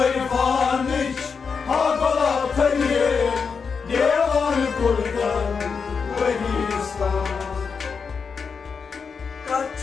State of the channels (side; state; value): right; quieter; 5.6 dB